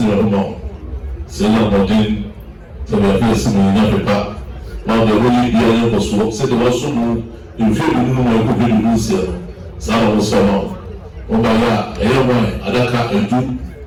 the mouth. Say, I'm not in, so we are facing in Africa. Now the way the was what said also in few no could be this year. Some was some. Obaya, Ewa, Adaka, Edu,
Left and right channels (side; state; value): both; identical; correlation 1.00